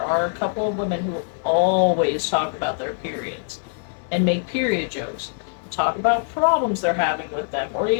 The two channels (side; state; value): right; silent; digital silence